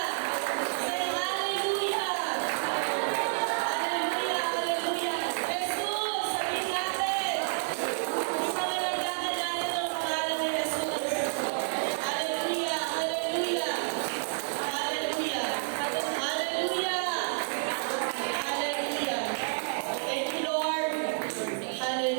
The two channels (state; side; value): silent; left; 58 dB below the other